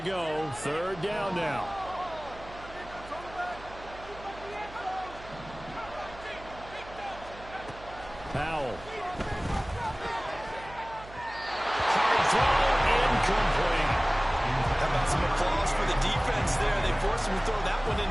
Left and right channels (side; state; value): right; noise; hum, 17 dB below the sound